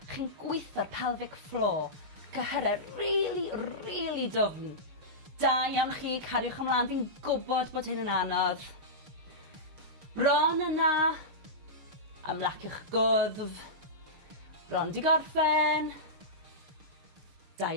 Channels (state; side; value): late; left; 6.6 ms